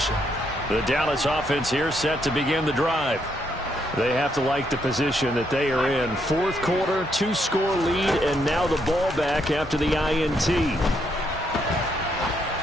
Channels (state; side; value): normal; both; correlation 0.75